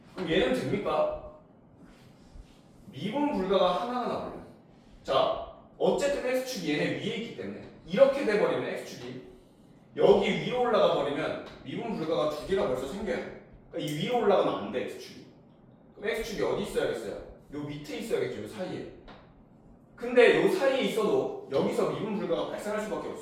그럼 얘는 됩니까? 미분 불가가 하나가 나와요. 자, 어쨌든 x축이 얘네 위에 있기 때문에 이렇게 돼버리면 x축이 여기 위로 올라가 버리면 미분 불가가 2개가 벌써 생겨요. 그러니까 이 위로 올라가면 안 돼, x축이. 그럼 x축이 어디 있어야겠어요? 요 밑에 있어야겠죠, 요 사이에. 근데 요 사이에 있어도 여기서 미분 불가가 발생할 수밖에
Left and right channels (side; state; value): both; identical; correlation 1.00